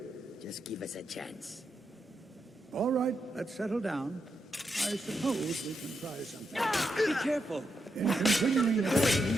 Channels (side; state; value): both; normal; correlation 0.84